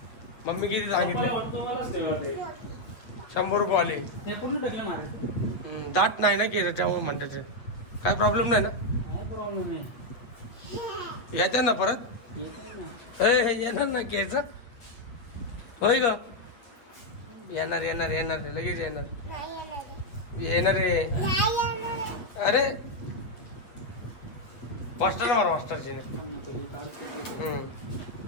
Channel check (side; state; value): right; late; 8.6 ms